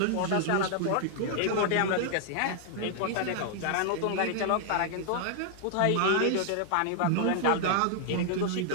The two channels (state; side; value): different; both; correlation 0.00